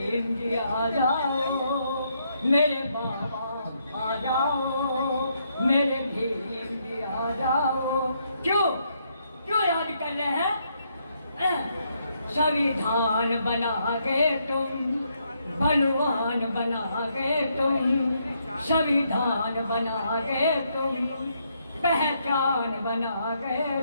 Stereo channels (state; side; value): inverted; both; correlation -0.75